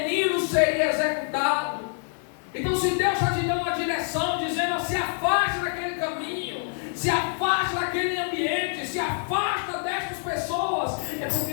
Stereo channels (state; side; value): silent; right; 56 dB below the other